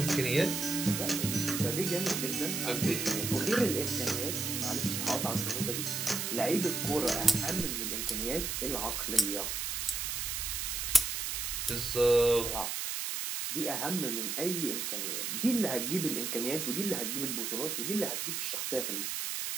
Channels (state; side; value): noise; right; hiss, 2 dB below the sound